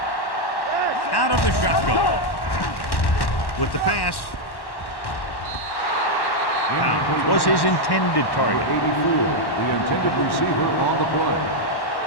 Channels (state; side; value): late; right; 1.1 ms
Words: Out of the shotgun. With the pass. Pound was his intended target. 84, the intended receiver on the play.